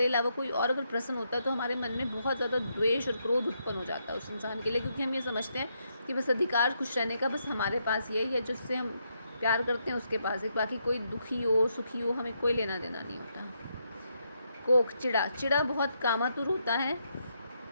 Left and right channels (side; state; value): both; inverted; correlation -0.79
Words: अलावा कोई और अगर प्रसन्न होता है तो हमारे मन में बहुत ज़्यादा द्वेष और क्रोध उत्पन्न हो जाता है उस इंसान के लिए, क्योंकि हम ये समझते हैं कि बस अधिकार खुश रहने का बस हमारे पास ये है, जिससे हम प्यार करते हैं उसके पास है, बाकी कोई दुखी हो सुखी हो हमें कोई लेना देना नहीं होता। कोक, चिड़ा बहुत कामातुर होता है।